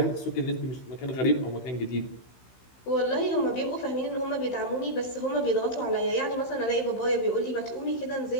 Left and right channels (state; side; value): late; right; 16 ms